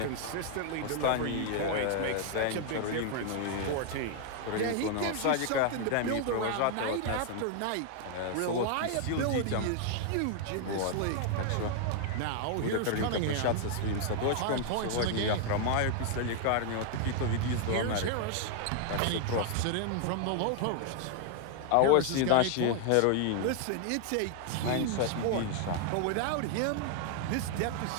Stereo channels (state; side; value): different; both; correlation 0.00